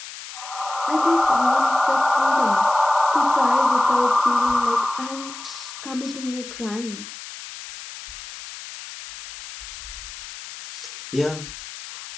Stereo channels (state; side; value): noise; left; hiss, 13 dB below the sound